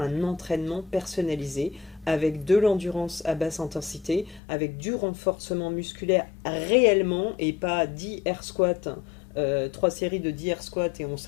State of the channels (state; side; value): drops out; right; at 4.4 s